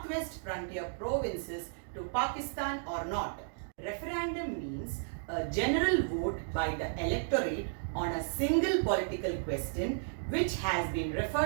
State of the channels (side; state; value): left; silent; digital silence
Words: frontier provinces to Pakistan or not. Referendum means a general vote by the electorate on a single political question which has been